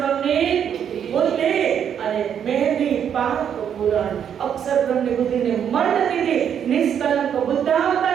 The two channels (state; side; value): quieter; left; 8.6 dB